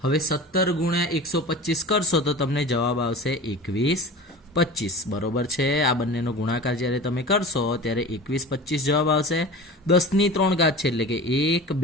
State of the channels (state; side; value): normal; both; correlation 0.35